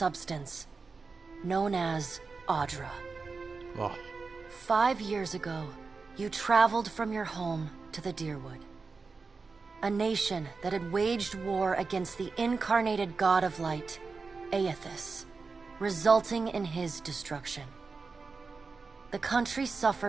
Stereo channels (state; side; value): quieter; left; 4.4 dB